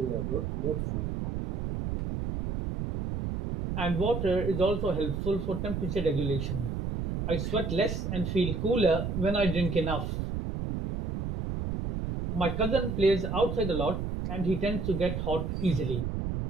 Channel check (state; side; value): noise; right; rumble, 3 dB below the sound